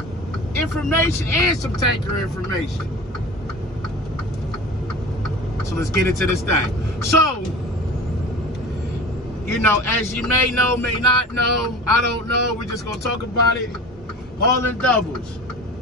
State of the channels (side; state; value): both; normal; correlation 0.36